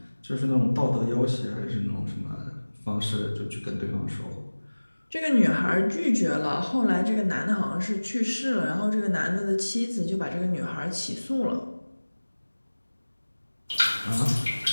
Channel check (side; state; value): both; inverted; correlation -1.00